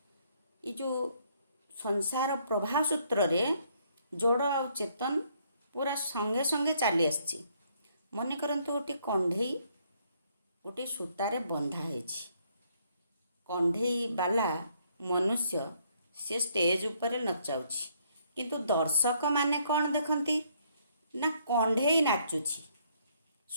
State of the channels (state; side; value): inverted; both; correlation -0.68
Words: ଏ ଯେଉଁ ସଂସାର ପ୍ରବାହ ସୂତ୍ରରେ ଜଡ଼ ଆଉ ଚେତନ ପୁରା ସଙ୍ଗେ ସଙ୍ଗେ ଚାଲି ଆସିଛି। ମନେ କରନ୍ତୁ ଗୋଟିଏ କଣ୍ଢେଇ ଗୋଟିଏ ସୂତାରେ ବନ୍ଧା ହେଇଛି। କଣ୍ଢେଇ ବାଲା ମନୁଷ୍ୟ ସେ ଷ୍ଟେଜ ଉପରେ ନଚାଉଛି, କିନ୍ତୁ ଦର୍ଶକମାନେ କ'ଣ ଦେଖନ୍ତି ନା କଣ୍ଢେଇ ନାଚୁଛି।